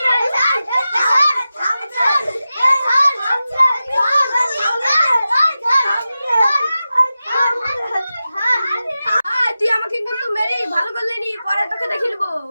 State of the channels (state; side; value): inverted; both; correlation -0.93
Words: তুই আমাকে কিন্তু মেরে ভালো করলি নি, পরে তোকে দেখে নেবো।